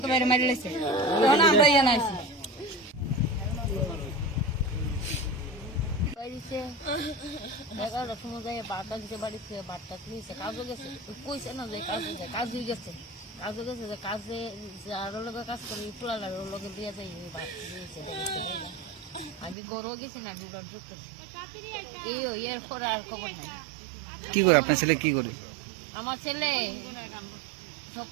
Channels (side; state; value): left; drops out; at 19.6 s